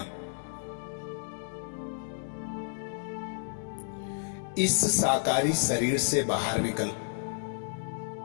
इस साकारी शरीर से बाहर निकल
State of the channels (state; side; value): silent; right; digital silence